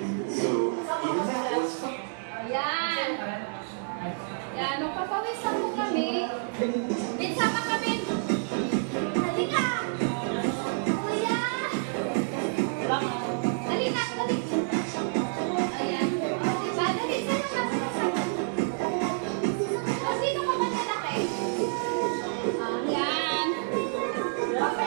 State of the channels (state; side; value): silent; left; digital silence